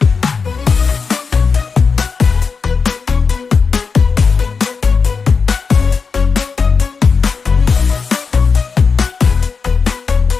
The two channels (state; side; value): quieter; right; 5.2 dB